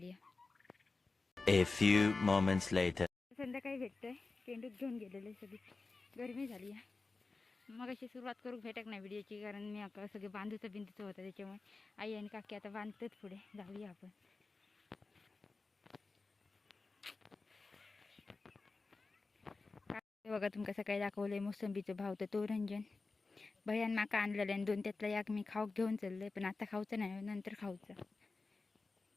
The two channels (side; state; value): right; quieter; 3.8 dB